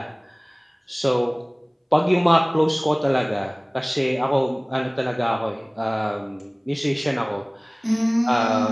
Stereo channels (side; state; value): both; identical; correlation 1.00